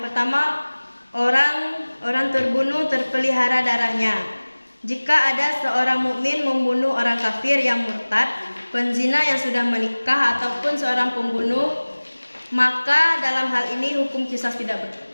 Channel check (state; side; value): inverted; both; correlation -1.00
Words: pertama, orang terbunuh terpelihara darahnya. Jika ada seorang mukmin membunuh orang kafir yang murtad, penzina yang sudah menikah ataupun seorang pembunuh, maka dalam hal ini hukum qisas tidak